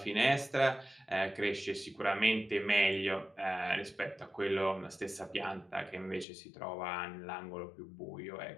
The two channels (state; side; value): drops out; right; at 6.2 s